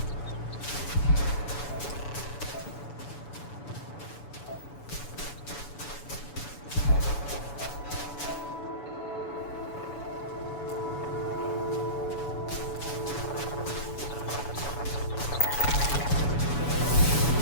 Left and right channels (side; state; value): right; late; 7.0 ms